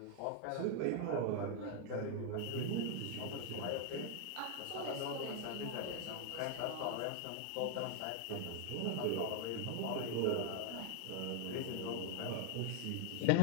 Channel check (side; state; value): both; different; correlation 0.00